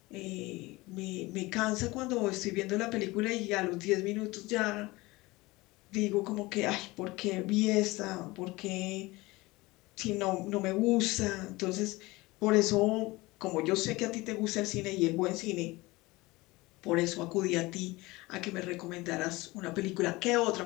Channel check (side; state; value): right; quieter; 21.5 dB